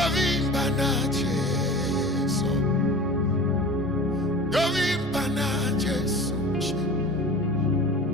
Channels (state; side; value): normal; both; correlation 0.37